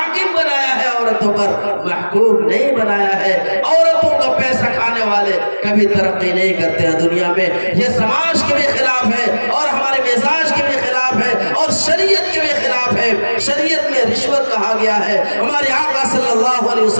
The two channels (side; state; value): both; inverted; correlation -1.00